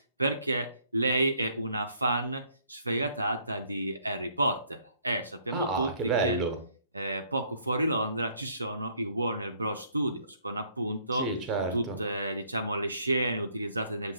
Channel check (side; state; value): both; inverted; correlation -0.64